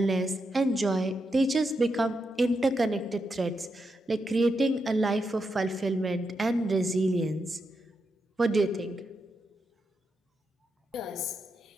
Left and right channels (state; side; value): normal; both; correlation 0.84